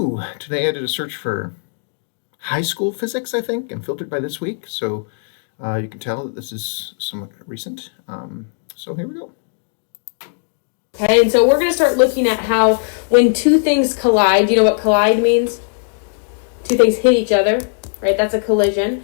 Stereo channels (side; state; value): right; silent; digital silence